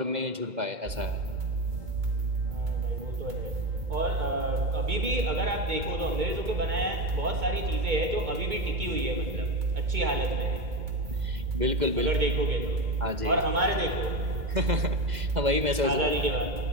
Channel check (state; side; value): late; left; 2.0 ms